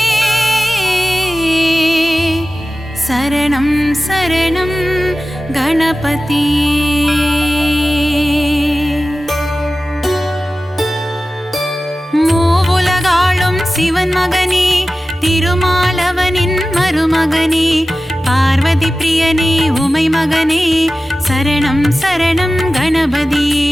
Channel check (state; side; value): normal; both; correlation 0.95